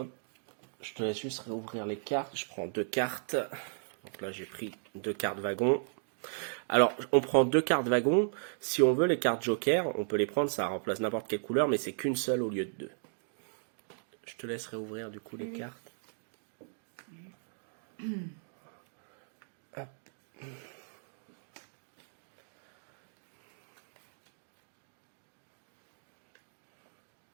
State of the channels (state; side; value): silent; left; digital silence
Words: Je te laisse juste réouvrir les cartes. Je prends 2 cartes. Donc là, j'ai pris 2 cartes wagon. Alors, on prend 2 cartes wagon. Si on veut les cartes joker, on peut les prendre. Ça remplace n'importe quelle couleur, mais c'est qu'une seule au lieu de 2. Je te laisse réouvrir du coup les cartes. Hop.